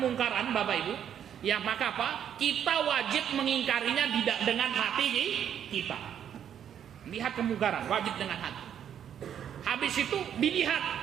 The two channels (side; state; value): left; quieter; 9.2 dB